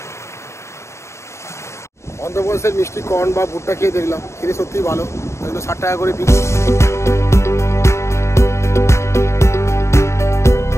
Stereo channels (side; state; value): right; late; 0.14 ms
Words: অন্ধ্রপ্রদেশের মিষ্টি কর্ন বা ভুট্টা খেয়ে দেখলাম, খেতে সত্যিই ভালো। 60 টাকা করে পিস।